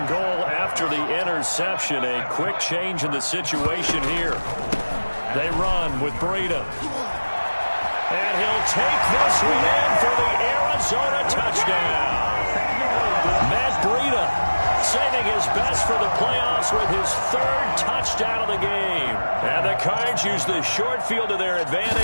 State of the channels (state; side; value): inverted; both; correlation -1.00